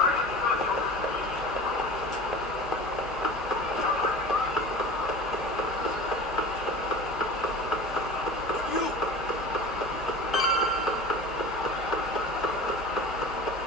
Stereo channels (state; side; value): normal; both; correlation 0.36